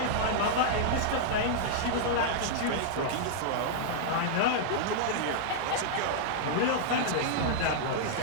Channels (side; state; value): both; different; correlation -0.02